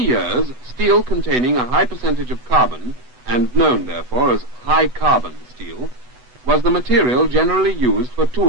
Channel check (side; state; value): left; late; 8.0 ms